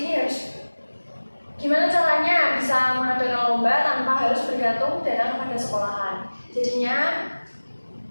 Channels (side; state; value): both; inverted; correlation -1.00